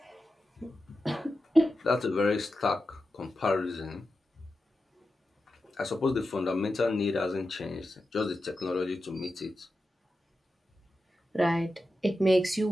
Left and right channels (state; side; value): normal; both; correlation 0.91